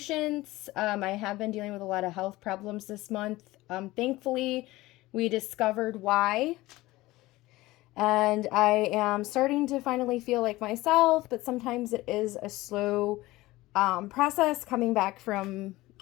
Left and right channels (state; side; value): quieter; right; 18.7 dB